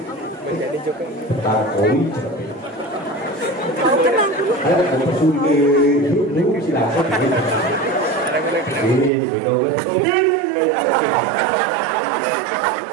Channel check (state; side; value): drops out; left; at 9.1 s